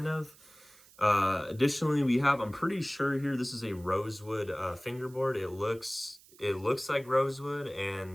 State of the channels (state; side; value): noise; right; hiss, 25 dB below the sound